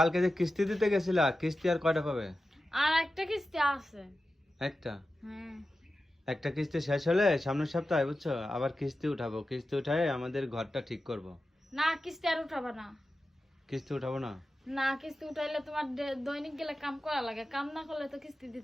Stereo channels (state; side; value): normal; both; correlation 0.93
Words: যে কিস্তি দিতে গেছিলা, কিস্তি আর কয়টা পাবে? আর একটা কিস্তি আছে। একটা। হ্যাঁ। একটা কিস্তি শেষ হলে সামনের সপ্তাহে বুঝছো আবার কিস্তি উঠাবো, কিস্তি উঠায় আমাদের ঘরটা ঠিক করব। না, কিস্তি আর উঠাবা না। কিস্তি উঠাবো না? না, কিস্তি উঠাইলে তোমার দৈনিক গেলে কাম করা লাগে, কাম না করলে তো কিস্তি